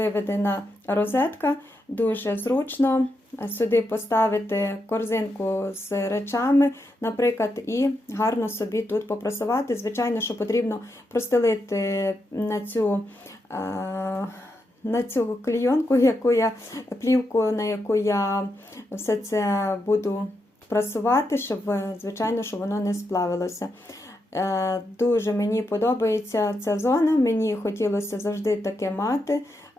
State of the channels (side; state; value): both; normal; correlation 0.84